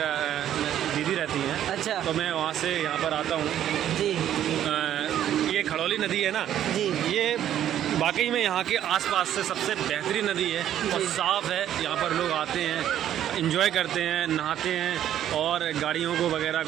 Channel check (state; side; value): quieter; left; 11.1 dB